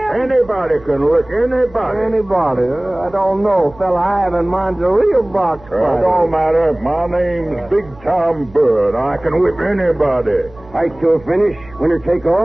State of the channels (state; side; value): noise; right; hum, 23 dB below the sound